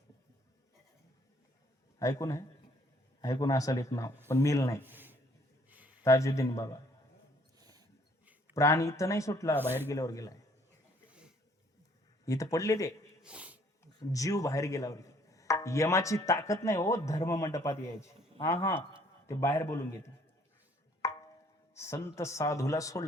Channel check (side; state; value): both; normal; correlation 0.62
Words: ऐकून आहे? ऐकून असाल एक नाव, पण मेल नाही. ताजुद्दीन बाबा. प्राण इथं नाही सुटला, बाहेर गेल्यावर गेलाय. इथं पडले ते जीव बाहेर गेल्यावर. यमाची ताकद नाही हो धर्म मंडपात यायची. ते बाहेर बोलून घेते. संत साधूला